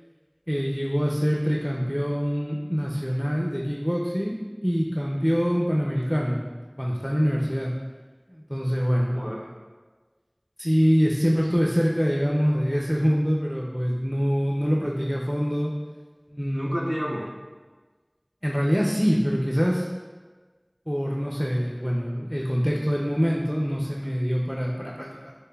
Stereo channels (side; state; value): both; identical; correlation 1.00